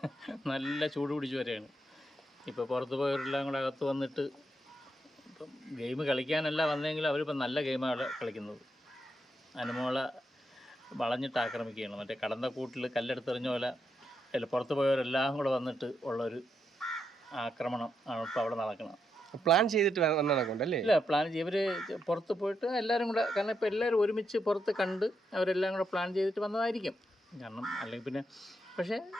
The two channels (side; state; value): both; normal; correlation 0.82